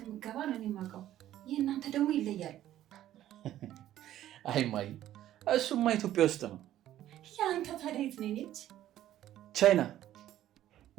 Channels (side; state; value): left; quieter; 12.8 dB